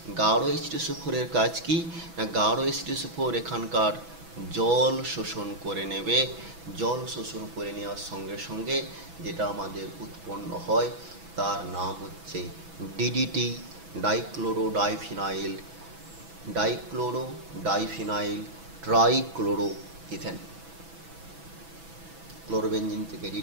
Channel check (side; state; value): left; late; 6.1 ms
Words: গাঢ় H2SO4 এর কাজ কি না, গাঢ় H2SO4 এখানকার জল শোষণ করে নেবে। জল শোষণ করে নেওয়ার সঙ্গে সঙ্গে যেটা আমাদের উৎপন্ন হয় তার নাম হচ্ছে ডিডিটি, ডাইক্লোরো ডাইফিনাইল ট্রাইক্লোরোইথেন। ক্লোরোবেনজিন থেকে